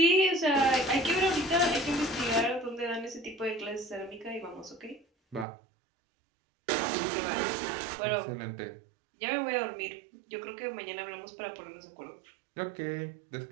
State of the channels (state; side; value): drops out; left; at 5.5 s